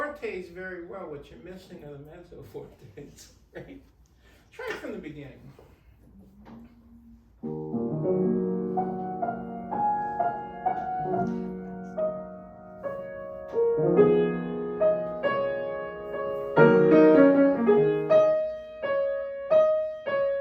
very well. What you're missing are the mezzo fortes, right? Try it from the beginning.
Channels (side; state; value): both; identical; correlation 1.00